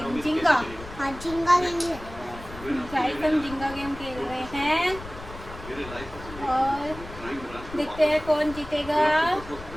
जिंगा। हाँ, जिंगा गेम है। गाइस हम जिंगा गेम खेल रहे हैं और देखते हैं कौन जीतेगा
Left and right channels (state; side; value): noise; left; rumble, 14 dB below the sound